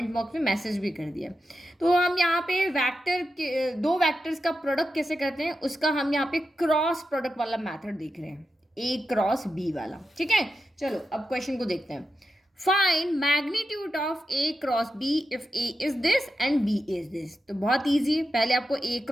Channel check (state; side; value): normal; both; correlation 0.89